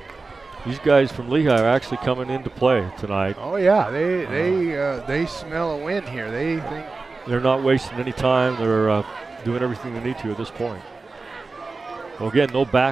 These guys from Lehi are actually coming into play tonight. Oh yeah, they smell a win here. They think they're not wasting any time. They're doing everything they need to at this point. Well, again, no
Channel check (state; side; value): quieter; left; 3.9 dB